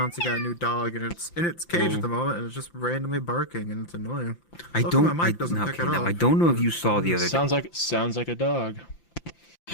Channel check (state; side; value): late; right; 5.8 ms